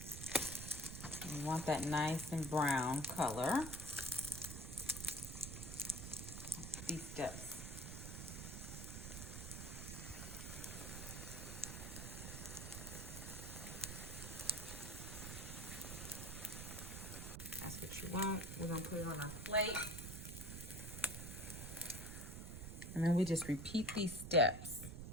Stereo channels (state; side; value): noise; right; rumble, 7 dB below the sound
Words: We want that nice and brown color. These steps. that's what you want. We're gonna put it on our plate. And then we just repeat these steps.